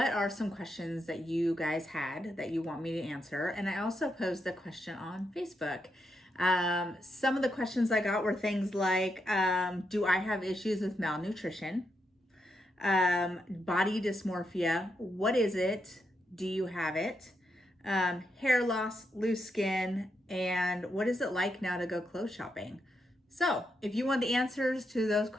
are some questions that you guys had that you want me to answer? And I also posed the question on Facebook. Some of the questions I got were things like, do I have issues with malnutrition? Body dysmorphia, what is it? Do you have it? Hair loss, loose skin, and what is it like now to go clothes shopping? So, if you want the answers to those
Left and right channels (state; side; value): normal; both; correlation 0.82